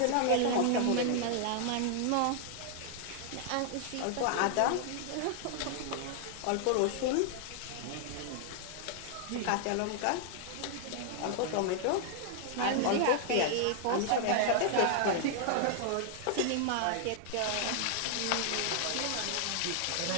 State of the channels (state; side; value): different; both; correlation 0.00